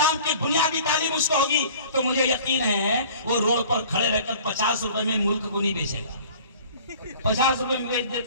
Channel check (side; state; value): both; inverted; correlation -0.47